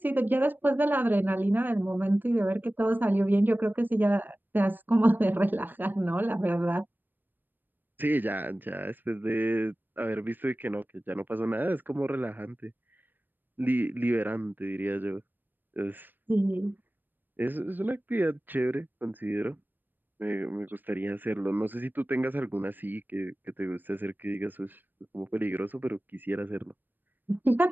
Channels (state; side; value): late; left; 0.092 ms